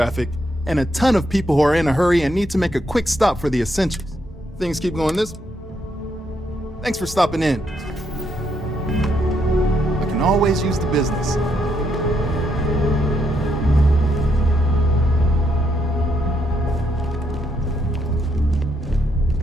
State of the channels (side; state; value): both; normal; correlation 0.77